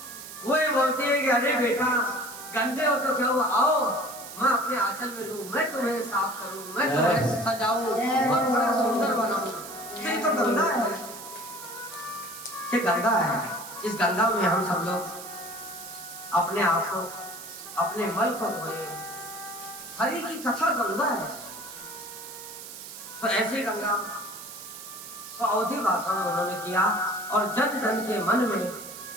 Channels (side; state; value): right; noise; hiss, 13 dB below the sound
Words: वो ये बोलती है कि अरे बेटा गंदे हो तो क्या हुआ, आओ मैं अपने आंचल में लूं, मैं तुम्हें साफ करूं, मैं तुम्हें सजाऊं और बड़ा सुंदर बनाऊं। ये तो गंगा है, ये गंगा है। इस गंगा में हम सब लोग अपने आप को, अपने मल को धोए। हरि की कथा गंगा है। तो ऐसी गंगा को अवधी भाषा में उन्होंने किया और जन जन के मन में